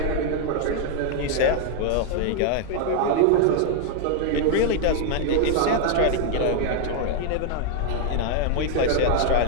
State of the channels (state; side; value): different; both; correlation 0.00